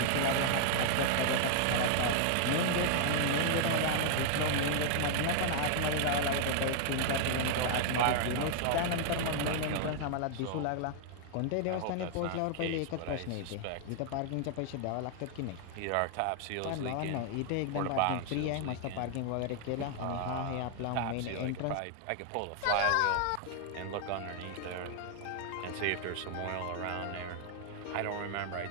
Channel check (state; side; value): different; both; correlation 0.00